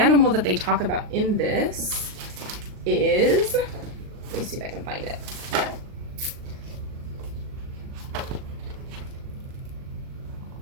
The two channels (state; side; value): late; left; 39 ms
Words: that they talk about in this is, let me see if I can find it.